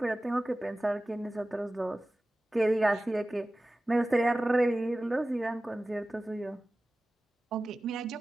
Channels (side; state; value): both; normal; correlation 0.96